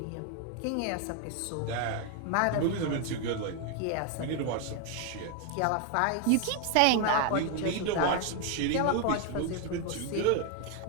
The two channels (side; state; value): both; different; correlation 0.01